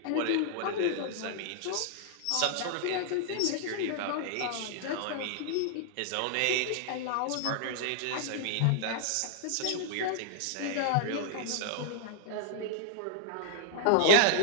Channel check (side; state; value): both; different; correlation -0.01